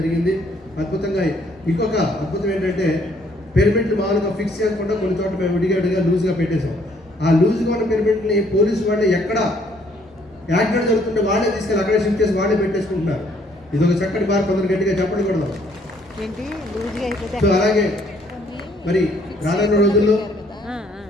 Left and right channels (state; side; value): normal; both; correlation 0.65